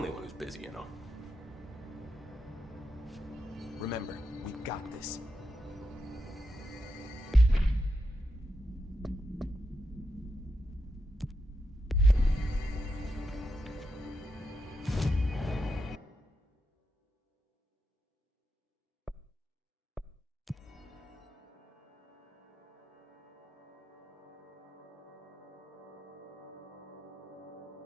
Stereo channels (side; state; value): both; normal; correlation 0.85